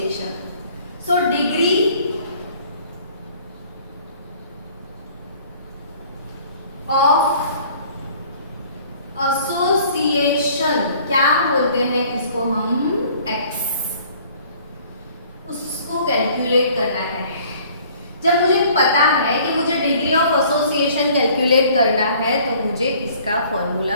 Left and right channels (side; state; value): both; inverted; correlation -0.54